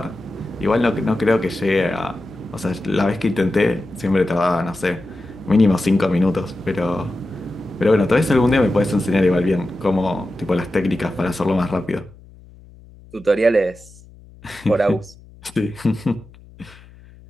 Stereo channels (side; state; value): left; noise; hum, 23 dB below the sound